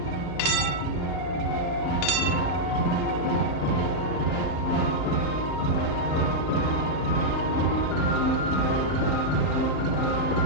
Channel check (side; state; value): left; noise; hum, 11 dB below the sound